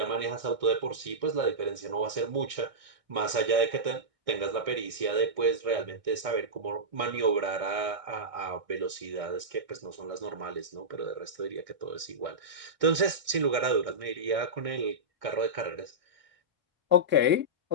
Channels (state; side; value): late; left; 1.6 ms